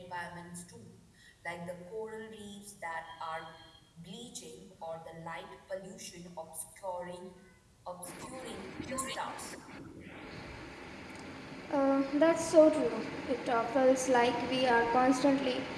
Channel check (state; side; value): identical; both; correlation 1.00